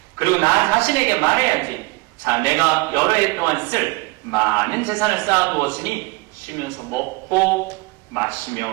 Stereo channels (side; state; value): left; quieter; 25.2 dB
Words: 그리고 나 자신에게 말해야지. 자, 내가 여러 해 동안 쓸 많은 재산을 쌓아두었으니 쉬면서 먹고 마시며